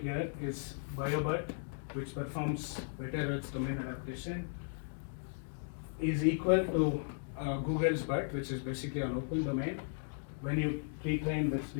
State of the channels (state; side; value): silent; right; digital silence